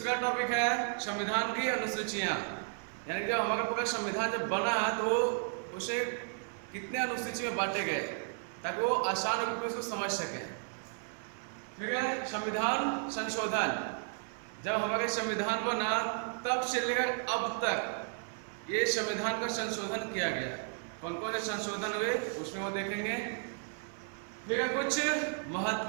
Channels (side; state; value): left; silent; 55 dB below the other